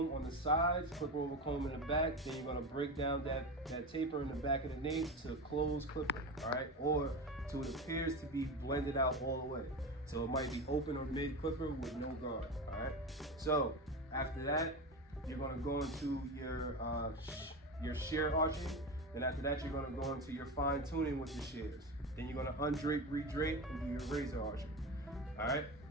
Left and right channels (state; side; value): normal; both; correlation 0.23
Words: on the sides, clipper over comb in the back. Then you're going to break down that taper in the back of the nape to close clipper, all right? Or to it appears to be blended out all the way. So it might be open or mid clipper with no guard, all right? So after that, you're going to go into your shear arching. Then after that, you're going to go into your fine tuning with the shears. Then you're going to undrape, redrape, and do your razor arching. All right?